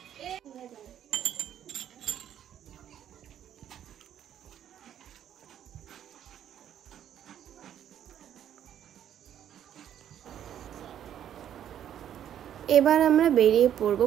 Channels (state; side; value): quieter; left; 10.2 dB